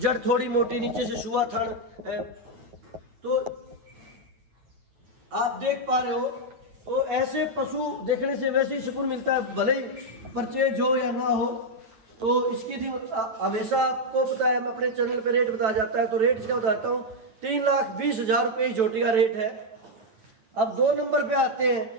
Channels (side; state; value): left; late; 9.1 ms